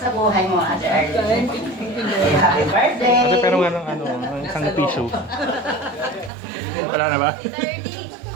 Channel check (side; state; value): left; drops out; at 6.3 s